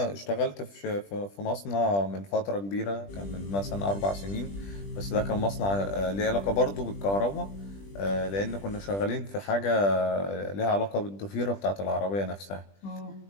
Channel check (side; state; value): right; late; 20 ms